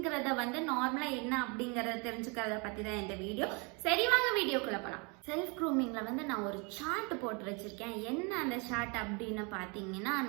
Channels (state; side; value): quieter; left; 32.3 dB